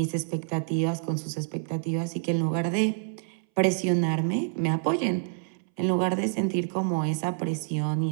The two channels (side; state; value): left; silent; 60 dB below the other